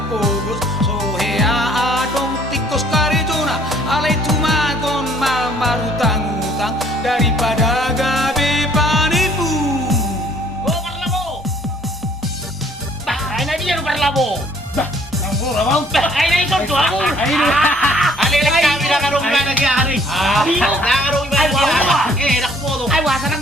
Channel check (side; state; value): both; normal; correlation 0.59